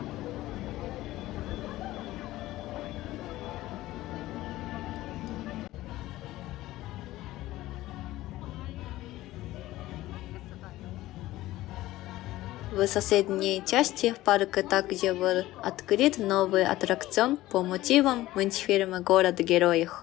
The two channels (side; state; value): right; quieter; 16.5 dB